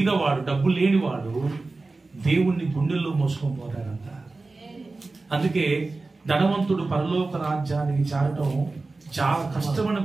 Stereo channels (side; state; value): left; quieter; 3.5 dB